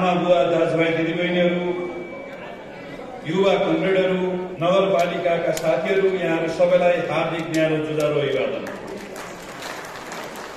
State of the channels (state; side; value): identical; both; correlation 1.00